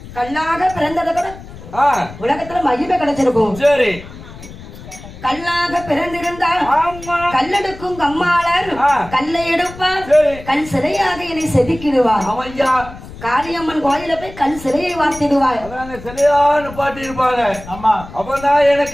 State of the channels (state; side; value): noise; left; rumble, 15 dB below the sound